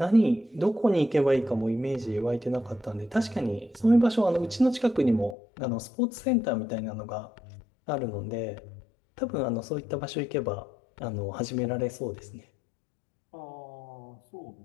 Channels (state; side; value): drops out; right; at 5.4 s